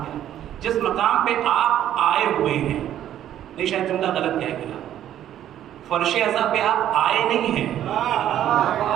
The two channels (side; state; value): left; quieter; 11.3 dB